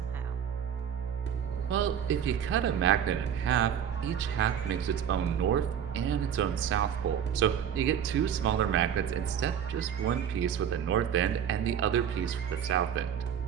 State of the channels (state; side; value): quieter; left; 8.7 dB